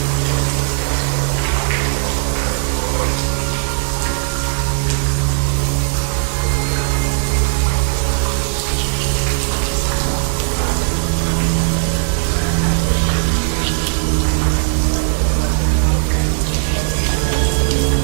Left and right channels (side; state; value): left; silent; digital silence